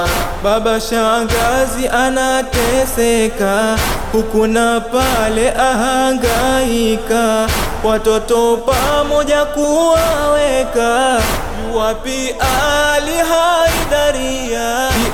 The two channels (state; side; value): identical; both; correlation 1.00